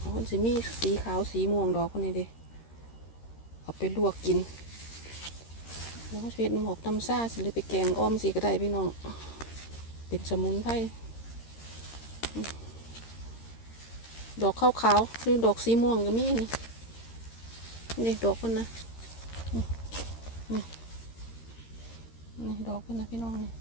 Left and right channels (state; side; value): late; right; 13 ms